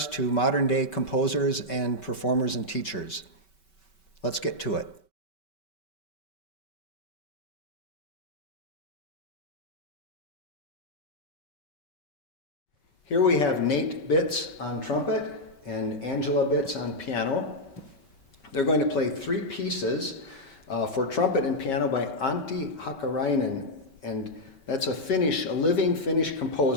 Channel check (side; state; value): right; late; 5.2 ms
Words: to modern-day composers and performers and teachers. Let's get to it. Here we have Nate Bitts on trumpet and Angela Bitts on piano. They're going to play three pieces for trumpet and piano by Antti Hakkarainen, and that's a living Finnish